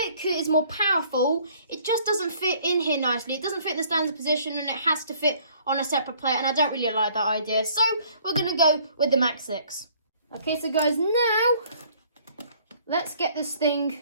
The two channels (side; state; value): both; inverted; correlation -0.58